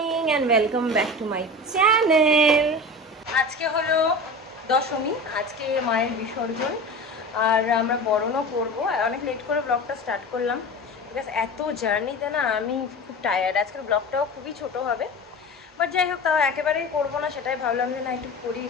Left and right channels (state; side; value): normal; both; correlation 0.32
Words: and welcome back to my channel. আজকে হলো দশমী, আজকে মায়ের বিসর্জন আর আমরা বরণও করবো। অনেক লেট করে ব্লগটা স্টার্ট করলাম বিকজ এত জার্নিতে না আমি খুব টায়ার্ড। আজকের ব্লগটাও খুবই ছোট হবে, বাট যাই হোক, তাও একেবারেই করবো না, সেটাই ভাবলাম যে না একটু করি,